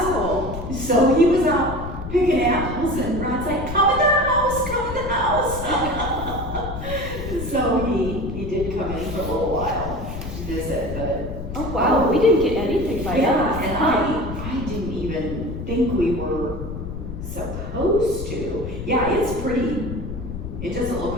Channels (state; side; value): noise; left; rumble, 8 dB below the sound